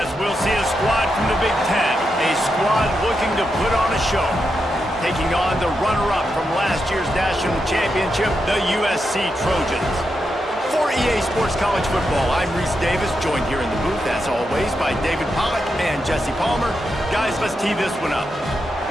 we'll see a squad from the Big Ten, a squad looking to put on a show, taking on the runner-up from last year's national championship, the USC Trojans. For EA Sports College Football, I'm Reese Davis, joined here in the booth, as always, by David Pollack and Jesse Palmer. Guys, let's tee this one up.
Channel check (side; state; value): both; normal; correlation 0.85